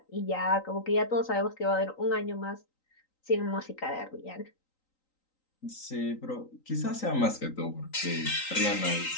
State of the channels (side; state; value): right; late; 3.9 ms